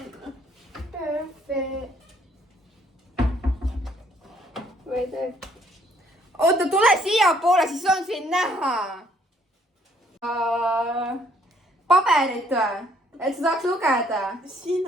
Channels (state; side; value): normal; both; correlation 0.65